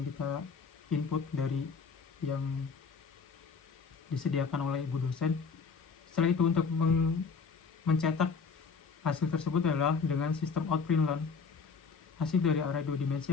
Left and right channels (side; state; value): right; quieter; 5.2 dB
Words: kita input dari yang disediakan oleh ibu dosen. Setelah itu untuk mencetak hasil tersebut adalah dengan sistem outprintln. Hasil dari array dua